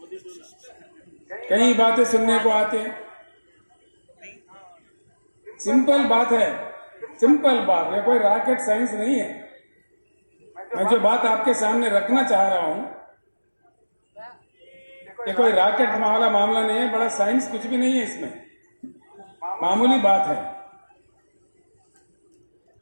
कई बातें सुनने को आते हैं। सिंपल बात है, सिंपल बात है, कोई रॉकेट साइंस नहीं है। मैं जो बात आपके सामने रखना चाह रहा हूं, ये कोई रॉकेट वाला मामला नहीं है, बड़ा साइंस कुछ भी नहीं है इसमें, मामूली बात है।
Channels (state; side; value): inverted; both; correlation -1.00